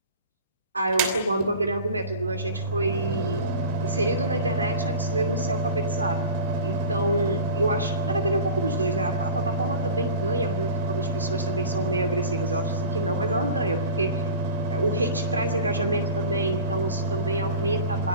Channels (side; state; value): both; inverted; correlation -0.36